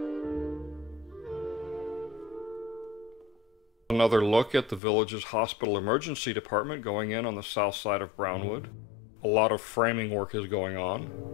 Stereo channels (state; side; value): drops out; right; at 4.8 s